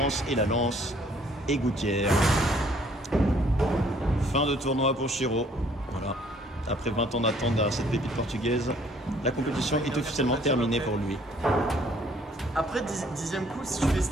et la lance. Et gouttière. Fin de tournoi pour Chiro. Voilà. Après 20 ans d'attente derrière cette pépite portugaise, la compétition est officiellement terminée pour lui. Après 10e coup, si tu fais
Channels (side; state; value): both; normal; correlation 0.61